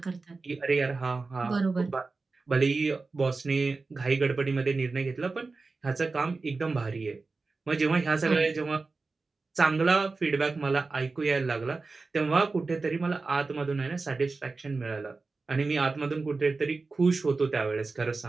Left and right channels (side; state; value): left; quieter; 3.9 dB